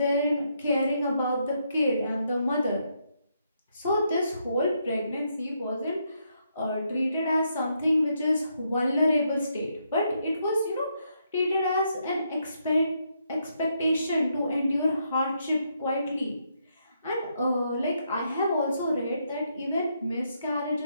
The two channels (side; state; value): both; inverted; correlation -0.77